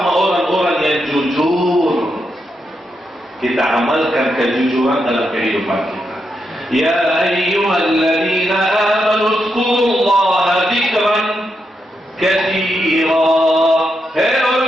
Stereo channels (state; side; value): normal; both; correlation 0.83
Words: orang-orang yang jujur. Kita amalkan kejujuran dalam kehidupan kita. Ya ayyuhalladzina amanu dzkurullaha dzikran katsira. Hei